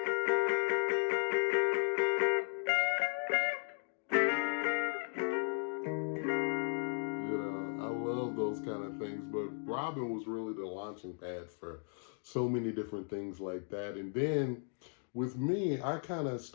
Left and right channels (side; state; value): right; silent; 54 dB below the other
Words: those kind of things. But Robben was really the launching pad for so many different things like that. And then with me, I kind of